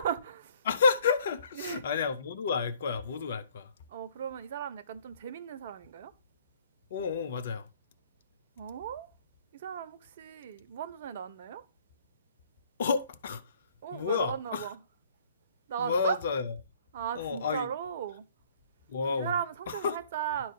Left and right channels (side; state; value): both; inverted; correlation -0.59